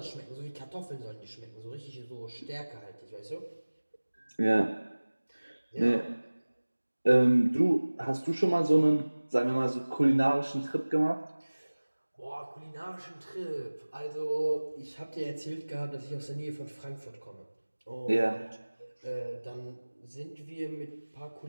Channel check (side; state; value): both; inverted; correlation -1.00